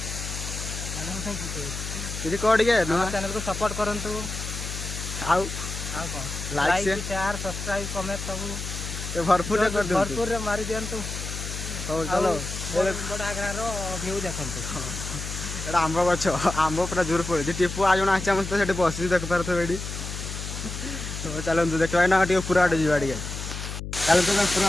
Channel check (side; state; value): left; noise; hum, 7 dB below the sound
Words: किसी कोड के नुआ चैनल को सपोर्ट करंतु आउ लाइक शेयर सब्सक्राइब कमेंट सब ते भरपूर कर दो भरपूर रे मारी दियंतु हो चलो बड़ा गारो व्यू देखंतु एडा आंबो गछ आंबो पूरा जोर पड़े टिपू आ जण आछा मस्त सेठी बसी देख पारथो एडी तो चलो देखबा ना टी पूरा आडे जीवा डी चलो तो पूरा